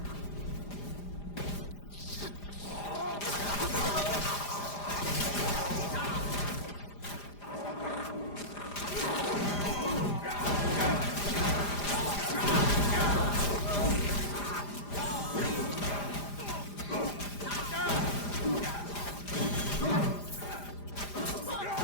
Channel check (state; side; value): late; right; 5.0 ms